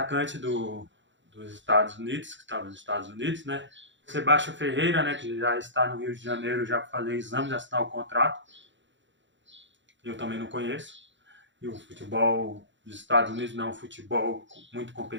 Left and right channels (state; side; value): late; left; 0.54 ms